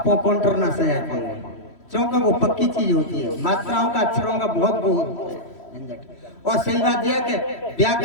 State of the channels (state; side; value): late; right; 3.1 ms